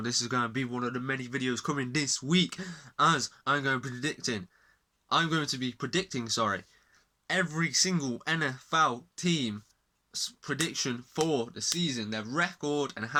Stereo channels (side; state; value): both; identical; correlation 1.00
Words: This is going to be one of the many videos coming this week, as I'm going to be predicting, every single NFL team prediction for the season, their record and